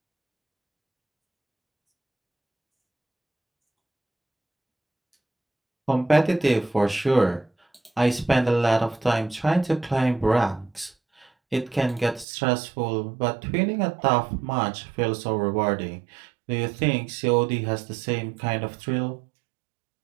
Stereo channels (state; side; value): drops out; left; at 12.2 s